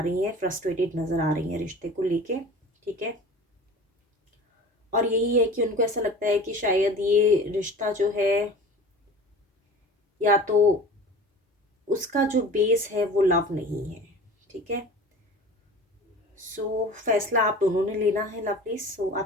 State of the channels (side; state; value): both; normal; correlation 0.39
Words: रही हैं, फ्रस्ट्रेटेड नज़र आ रही हैं रिश्ते को लेके, ठीक है। और यही है कि उनको ऐसा लगता है कि शायद ये रिश्ता जो है, या तो उसका जो बेस है वो लव नहीं है, ठीक है। सो फैसला आप दोनों ने लेना है लवली। सो